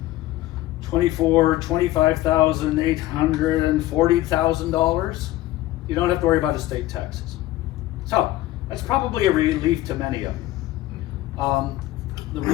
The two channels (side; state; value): right; quieter; 16.1 dB